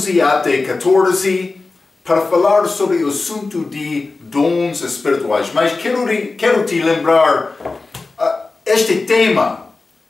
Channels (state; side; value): quieter; right; 3.7 dB